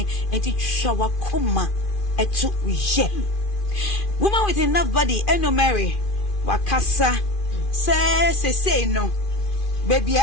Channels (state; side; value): late; right; 2.4 ms